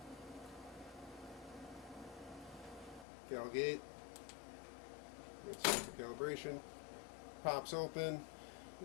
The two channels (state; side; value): drops out; right; at 3.1 s